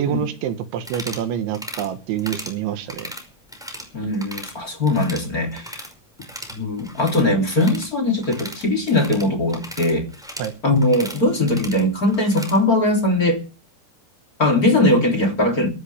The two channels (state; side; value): normal; both; correlation -0.03